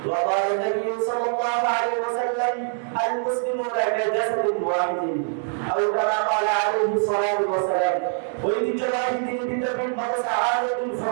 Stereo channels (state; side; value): silent; left; 63 dB below the other